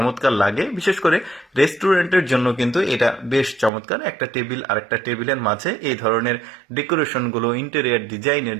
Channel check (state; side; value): drops out; left; at 3.7 s